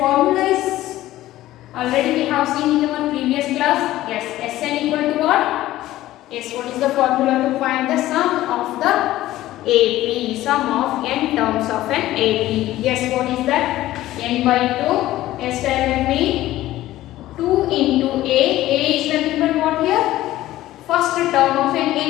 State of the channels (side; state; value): right; quieter; 15.3 dB